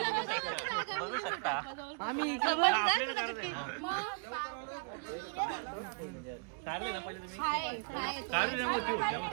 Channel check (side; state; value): left; quieter; 37.2 dB